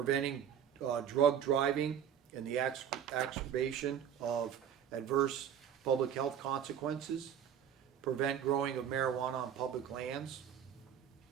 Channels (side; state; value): left; quieter; 9.0 dB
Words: drug driving and the exacerbation of adverse public health consequences, prevent growing of marijuana on public lands,